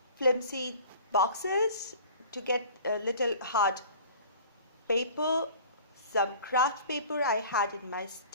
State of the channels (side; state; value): both; inverted; correlation -0.45